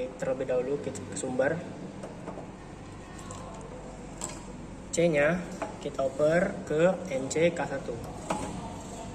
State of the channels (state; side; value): identical; both; correlation 1.00